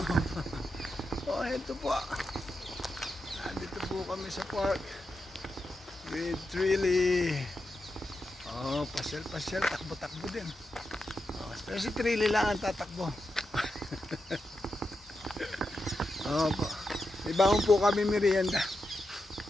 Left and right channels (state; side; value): normal; both; correlation 0.87